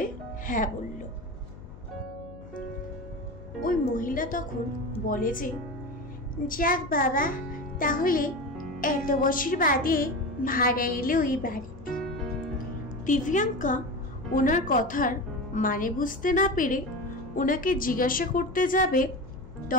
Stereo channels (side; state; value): left; noise; hum, 18 dB below the sound